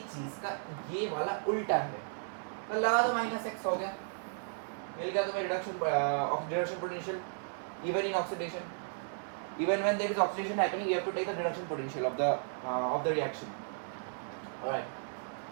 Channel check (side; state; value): left; silent; digital silence